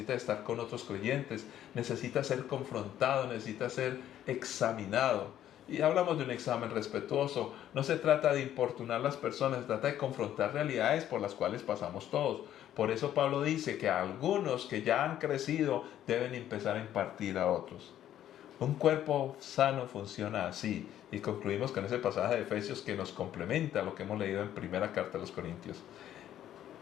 estar con otros creyentes, necesitas ser confrontado, necesitas ser examinado. Y hablamos de un examen respetuoso. No se trata de importunar a las personas, se trata de confrontar realidades por las cuales pasamos todos. Por eso Pablo dice que algunos que ya han crecido deben empezar a impartir a otros. Un cuerpo sano funciona así. Y concluimos con ese pasaje de Efesios que nos complementa lo que hemos leído en primera carta de los Corintios.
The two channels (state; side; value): quieter; right; 11.5 dB